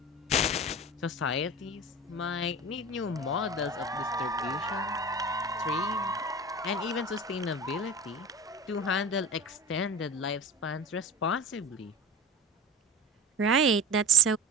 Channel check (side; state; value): both; normal; correlation 0.35